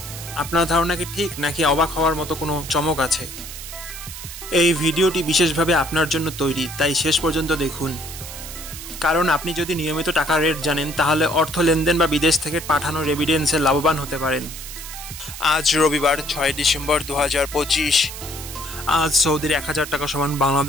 আপনার ধারণা কি ঠিক, নাকি অবাক হওয়ার মতো কোনো চমক আছে? এই ভিডিওটি বিশেষভাবে আপনার জন্য তৈরি, তাই শেষ পর্যন্ত দেখুন। কারণ আপনি যদি নিয়মিত টাকার রেট জানেন, তাহলে অর্থ লেনদেন বা বিদেশ থেকে পাঠানো রেমিটেন্সে লাভবান হতে পারেন। আজ রবিবার 6 ডিসেম্বর 2025। আজ সৌদির 1000 টাকা সমান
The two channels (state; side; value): noise; right; hiss, 11 dB below the sound